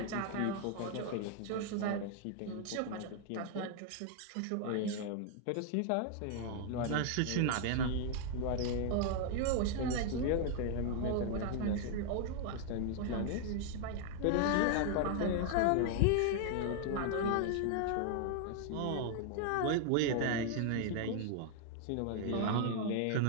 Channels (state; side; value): different; both; correlation 0.00